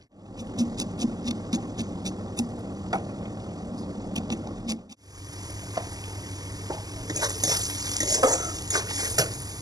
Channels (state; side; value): late; left; 0.18 ms